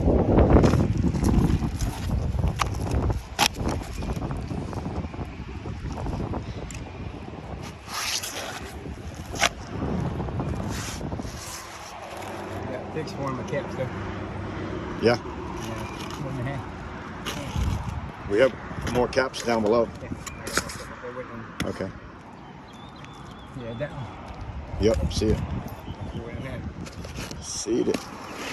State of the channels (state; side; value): identical; both; correlation 1.00